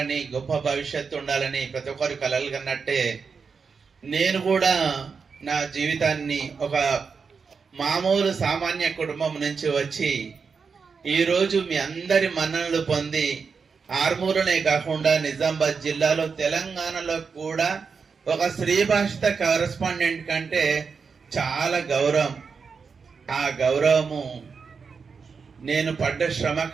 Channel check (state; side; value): quieter; left; 5.4 dB